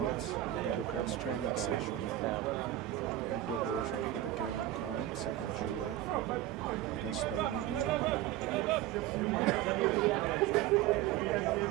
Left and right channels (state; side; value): quieter; left; 13.7 dB